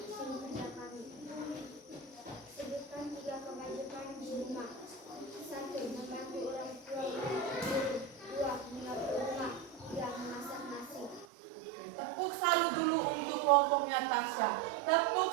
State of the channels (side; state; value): left; drops out; at 11.2 s